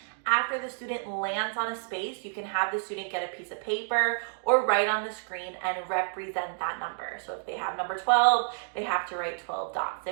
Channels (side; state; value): left; silent; digital silence